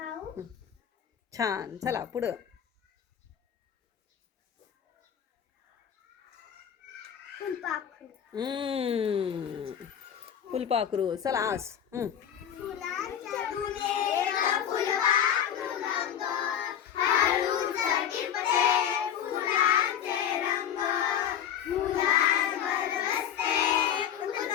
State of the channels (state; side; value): quieter; right; 9.3 dB